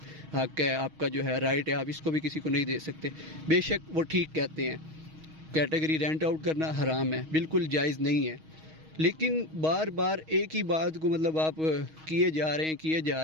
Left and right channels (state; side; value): late; left; 6.3 ms